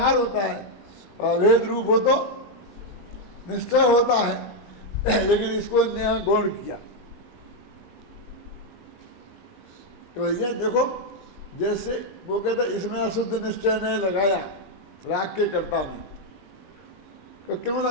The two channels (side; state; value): right; late; 20 ms